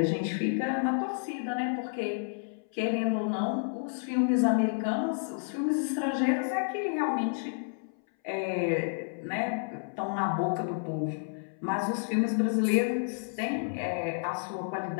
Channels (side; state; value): right; silent; 58 dB below the other